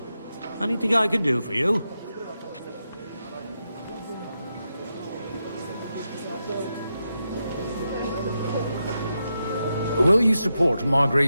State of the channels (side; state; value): both; inverted; correlation -0.87